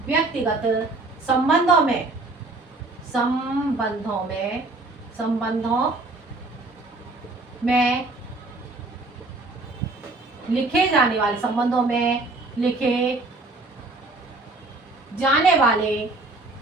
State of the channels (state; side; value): quieter; left; 3.1 dB